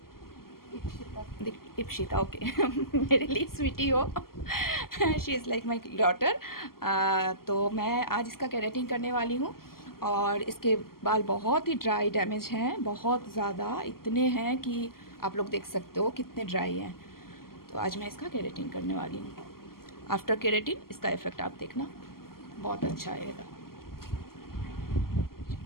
इप्सिता। इप्शिता, ओके। मेरे लिए स्वीटी हो। She is like my daughter. तो मैं आज इसका केरेटिन करने वाली हूँ। और इसके बाल बहुत ही ड्राई डैमेज हैं, बहुत ज़्यादा, इतने हैं कि आप लोग देख सकते हो कितने ड्राई हैं। तो आज मैं इसका केरेटिन करने वाली हूँ। आफ्टर केरेटिन इसका इफ़ेक्ट आप देखना, बहुत अच्छा आएगा।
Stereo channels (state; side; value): late; right; 0.92 ms